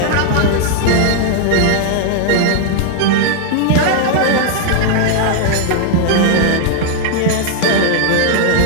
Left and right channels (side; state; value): both; different; correlation 0.00